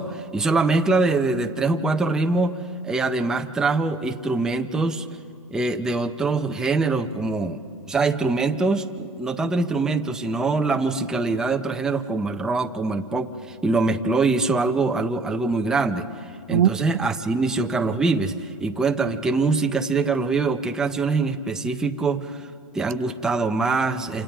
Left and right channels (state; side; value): quieter; left; 3.3 dB